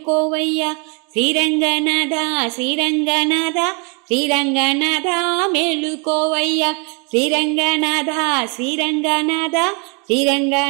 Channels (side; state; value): left; quieter; 34.2 dB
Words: శ్రీరంగనాథ శ్రీరంగనాథ శ్రీరంగనాథ మేలుకోవయ్యా శ్రీరంగనాథ శ్రీరంగనాథ